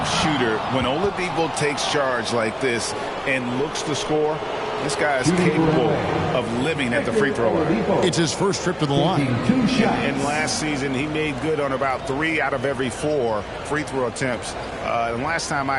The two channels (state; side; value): identical; both; correlation 1.00